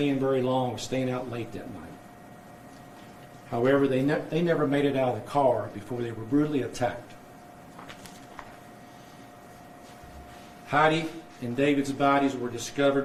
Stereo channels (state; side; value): identical; both; correlation 1.00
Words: very long or staying out late that night. However, they never made it out of the car before they were brutally attacked. Heidi and David's bodies were